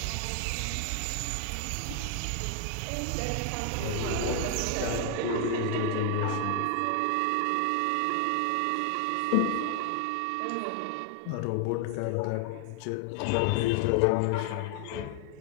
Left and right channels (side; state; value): both; different; correlation 0.00